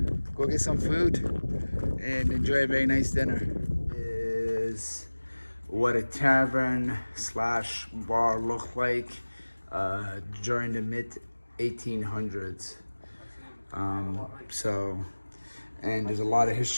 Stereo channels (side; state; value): both; inverted; correlation -1.00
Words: go get some food and enjoy a very nice dinner. Is what a tavern slash bar looked like during the mid 1800s. And there's a lot of